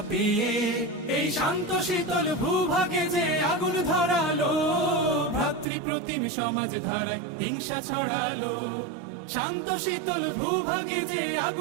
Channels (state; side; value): drops out; left; at 5.7 s